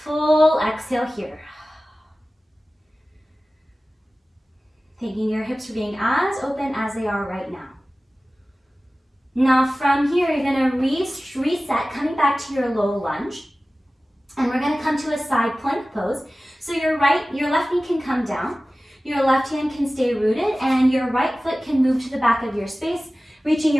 exhale here. Taking your hips for being as open as they are right now. Now from here, you're gonna reset, coming back to your low lunge. And we're gonna come to a side plank pose. So your left knee can come down, your left hand can stay rooted, and your right foot can move to the back of your space, reaching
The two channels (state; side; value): normal; both; correlation 0.97